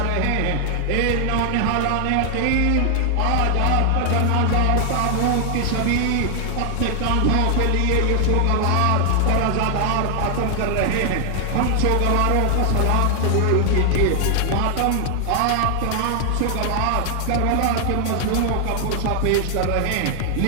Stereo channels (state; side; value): different; both; correlation 0.00